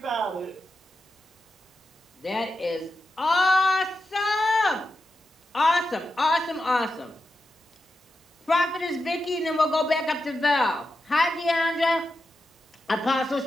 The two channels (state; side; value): normal; both; correlation 0.89